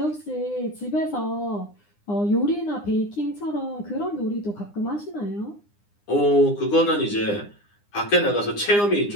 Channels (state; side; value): late; right; 9.8 ms